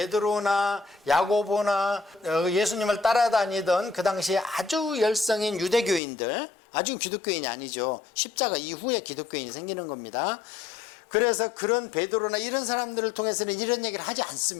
야고보나 예수님을 따라다니던 그 당시에 아주 열성인 유대교인들, 아주 기독교인이 아니죠. 십자가 이후에 기독교인이 생기는 겁니다. 그래서 그런 베드로나 이런 사람들을 통해서는 이런 얘기를 하지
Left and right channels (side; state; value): right; drops out; at 6.0 s